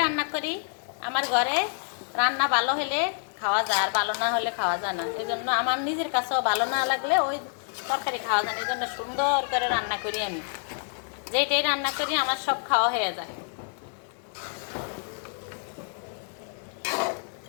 রান্না করি, আমার ঘরে রান্না ভালো হলে খাওয়া যায়, আর ভালো না হলে খাওয়া যায় না। এই জন্য আমার নিজের কাছেও ভালো না লাগলে ওই তরকারি খাওয়া যায় না। এই জন্য সুন্দর করে রান্না করি আমি, যেটাই রান্না করি আমার সব খাওয়া হয়ে যায়।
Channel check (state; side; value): silent; right; 60 dB below the other